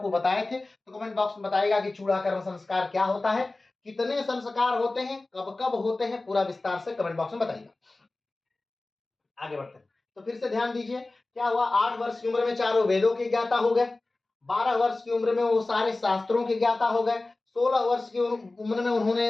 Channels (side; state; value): right; quieter; 3.1 dB